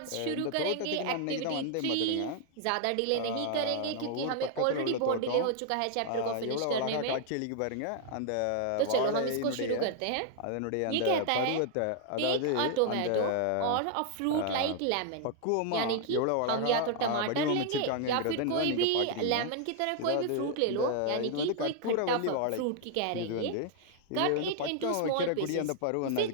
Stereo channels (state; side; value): different; both; correlation 0.00